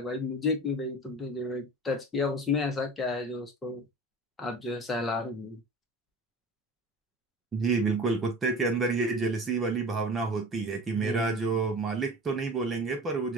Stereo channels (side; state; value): both; normal; correlation 0.37